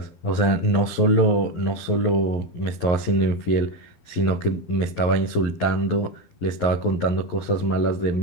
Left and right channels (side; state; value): right; late; 11 ms